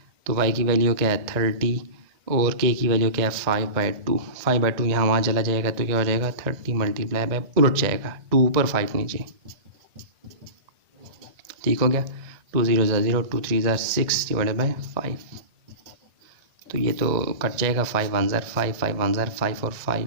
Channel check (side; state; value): left; late; 1.9 ms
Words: तो y की वैल्यू क्या है 30 और k की वैल्यू क्या है 5/2। 5/2 यहाँ वहाँ चला जाएगा तो क्या हो जाएगा 30 मल्टीप्लाई बाय, उलट जाएगा 2 ऊपर 5 नीचे, ठीक हो गया। 2 0 0, 2 3 6 डिवाइडेड बाय 5। तो ये तो कट जाएगा, 5 1 5, 5 1 5 और